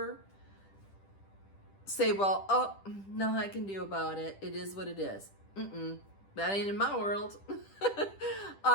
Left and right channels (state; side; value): late; right; 10 ms